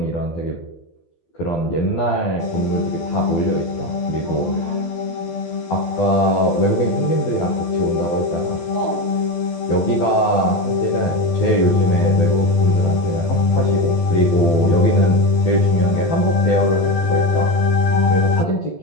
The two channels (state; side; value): late; right; 12 ms